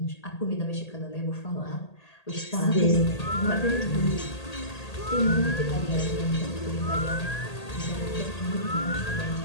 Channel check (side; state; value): right; late; 1.8 ms